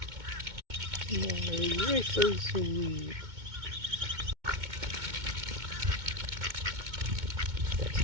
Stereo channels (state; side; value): late; left; 2.2 ms